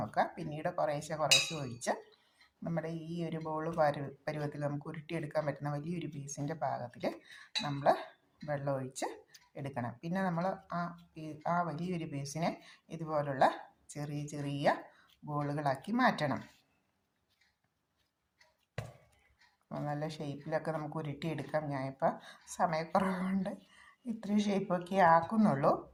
പിന്നീട് കുറേശ്ശെ ഒഴിച്ച് നമ്മുടെ ഈ ഒരു ബോൾ പരുവത്തിൽ നമുക്ക് ഉരുട്ടിയെടുക്കാൻ പറ്റുന്ന വലിയൊരു പീസിൻ്റെ പാകത്തിൽ നമ്മൾ വെള്ളം ഒഴിച്ച് എടുക്കണം. പിന്നെ നമ്മൾ ആ വലിയൊരു പീസിനെ ഇതുപോലുള്ള ചെറിയ ചെറിയ ബോളുകളാക്കി മാറ്റണം. നല്ല ഷേപ്പിലൊക്കെ നമുക്ക് ഉരുട്ടിയെടുക്കാം. ഞാനിപ്പോൾ സമയക്കുറവുകൊണ്ട് ഇത്രയും ഷേപ്പൊക്കെ ആക്കുന്നുള്ളൂ.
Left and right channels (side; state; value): both; identical; correlation 1.00